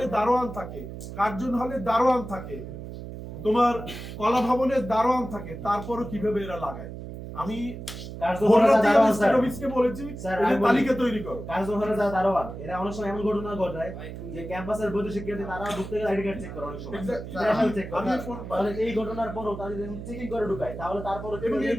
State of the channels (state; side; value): noise; right; hum, 10 dB below the sound